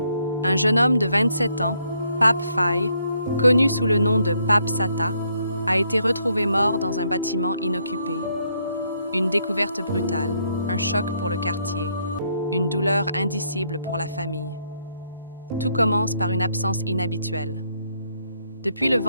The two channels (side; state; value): both; inverted; correlation -0.72